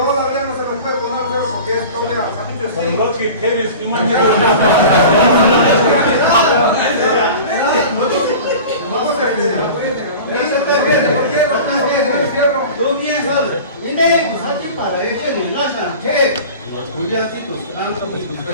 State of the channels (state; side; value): inverted; both; correlation -0.37